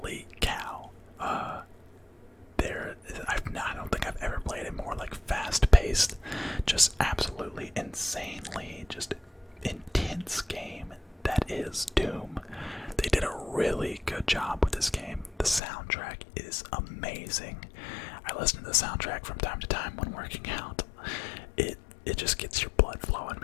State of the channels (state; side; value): drops out; right; at 15.6 s